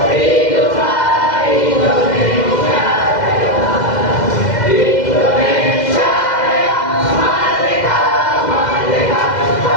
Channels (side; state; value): right; late; 2.0 ms